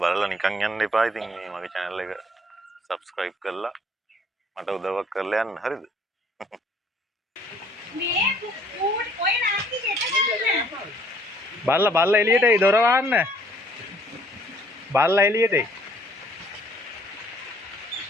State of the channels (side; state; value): both; normal; correlation 0.61